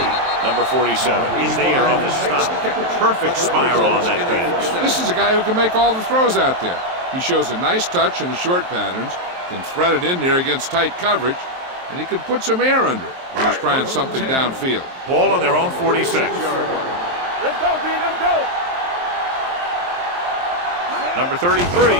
number 47, is there on the stop. Perfect spiral on that pass. This is a guy who can make all the throws out there. He shows a nice touch in the short patterns, can thread it in there against tight coverage, and he can put some air under it when he's trying something downfield. Ball on their own 46. Let's go, D, let's go. Number 33,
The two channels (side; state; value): left; late; 23 ms